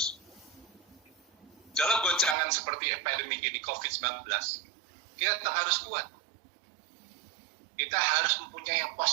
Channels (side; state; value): left; drops out; at 2.4 s